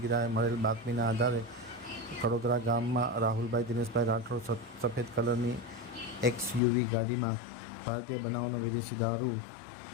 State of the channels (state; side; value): drops out; right; at 6.6 s